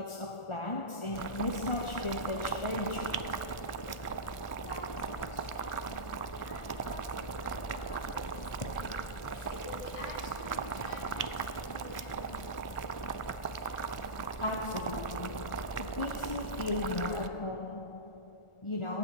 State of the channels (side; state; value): right; late; 1.4 ms